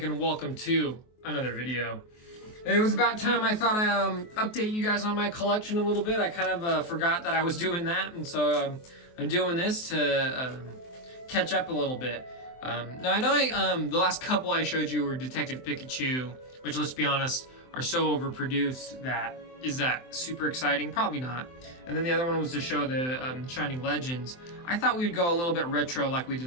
and welcome to another video. It was about time I thought I'd update you guys on my collection a little bit. I kind of forgot that I was doing that, and so I'm doing this to catch up a little bit. Now I know the last couple I showed you were Detective Pikachu, which, let's be honest, are so overproduced that is that super exciting? Probably not. And then the other one was to show the Shining Legends. I thought we would go a little bit retro like we did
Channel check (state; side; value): late; right; 23 ms